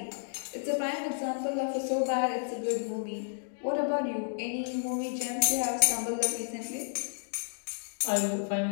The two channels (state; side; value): silent; right; digital silence